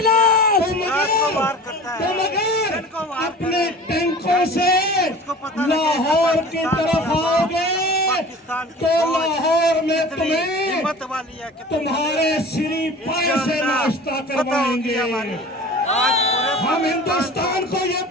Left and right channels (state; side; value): normal; both; correlation 0.40